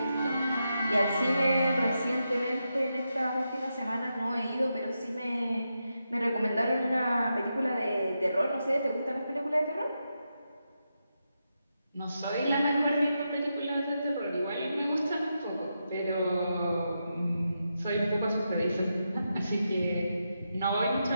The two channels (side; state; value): both; inverted; correlation -0.86